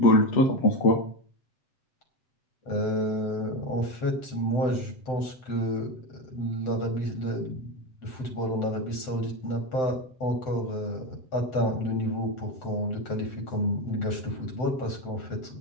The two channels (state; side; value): late; right; 7.8 ms